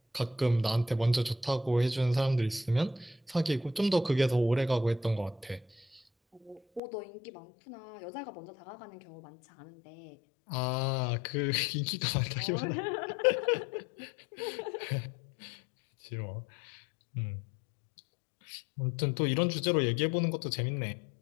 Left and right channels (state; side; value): drops out; right; at 6.8 s